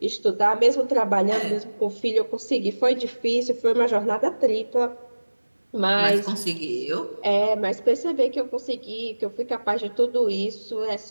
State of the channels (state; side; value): inverted; both; correlation -1.00